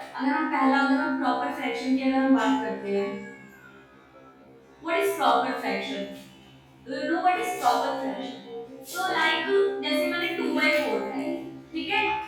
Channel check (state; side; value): identical; both; correlation 1.00